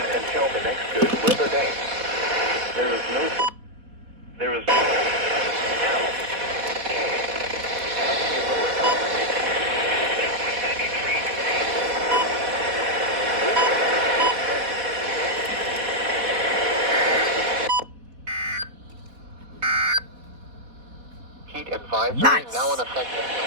until the next good weather day. There is no... Heat advisory Nice. now in effect.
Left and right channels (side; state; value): left; late; 4.1 ms